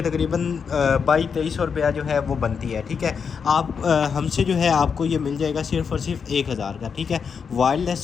तकरीबन 2200 रुपया जो है वो बनती है। ठीक है, आप हमसे जो है आपको ये मिल जाएगा सिर्फ़ और सिर्फ 1000 का। ठीक है, वायरलेस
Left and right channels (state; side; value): quieter; right; 6.2 dB